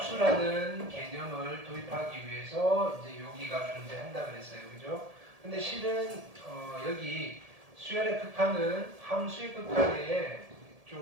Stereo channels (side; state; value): left; late; 1.7 ms